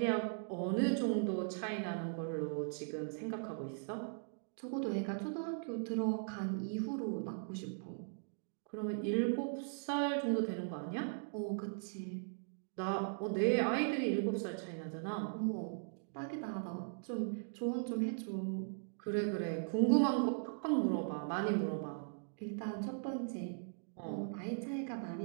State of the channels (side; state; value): left; silent; digital silence